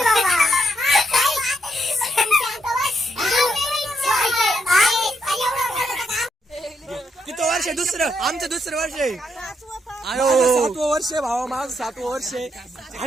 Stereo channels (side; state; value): both; normal; correlation 0.77